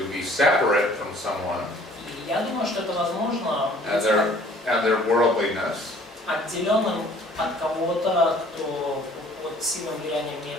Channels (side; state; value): both; normal; correlation 0.55